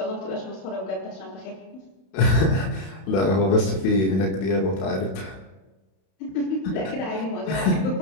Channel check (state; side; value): late; right; 31 ms